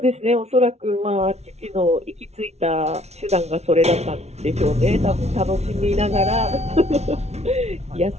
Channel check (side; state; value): left; late; 0.31 ms